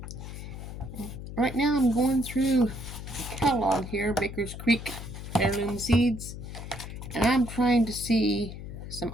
Right now I'm going through the catalog here, Baker's Creek Heirloom Seeds, and I'm trying to see some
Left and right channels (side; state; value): left; noise; hum, 10 dB below the sound